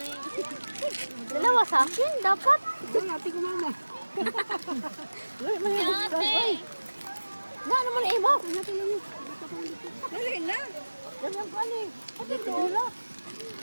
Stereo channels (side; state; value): both; inverted; correlation -1.00